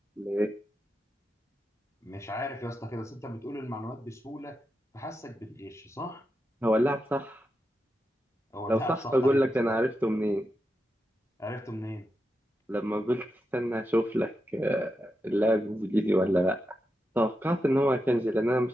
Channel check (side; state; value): both; normal; correlation 0.87